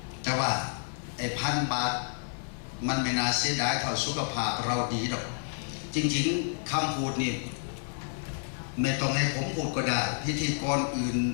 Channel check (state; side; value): silent; right; 58 dB below the other